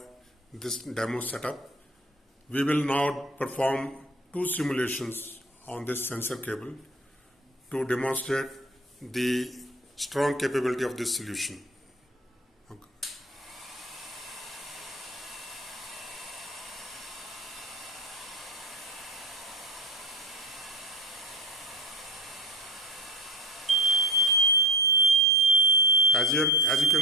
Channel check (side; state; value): both; normal; correlation 0.33